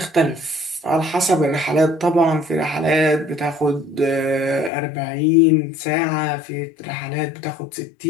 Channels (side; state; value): right; drops out; at 4.7 s